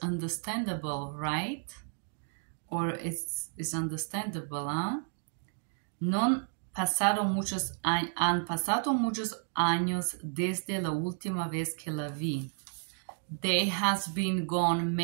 understandable, right? Or it's understandable, huh? Han pasado muchos años desde la última vez que la vi. There has been gone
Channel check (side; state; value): left; silent; 56 dB below the other